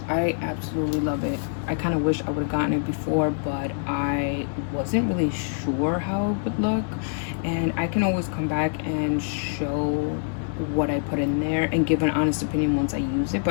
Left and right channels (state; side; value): silent; right; digital silence